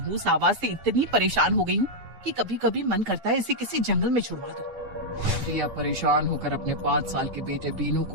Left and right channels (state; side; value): late; left; 9.6 ms